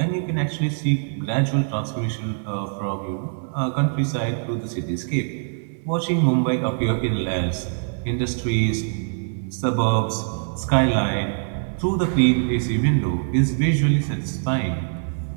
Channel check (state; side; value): silent; left; digital silence